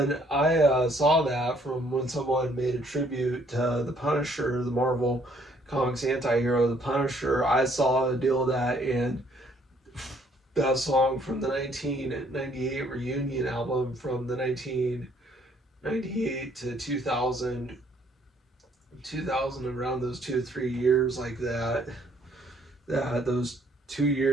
I saw that from when someone made a tribute to the Punisher, the Marvel Comics anti-hero, the Punisher. I saw a deal of that, and that song from the 1998 reunion album, from the 1998 to 2000, around those 2 or 3 years like that, those 2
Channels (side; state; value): both; normal; correlation 0.64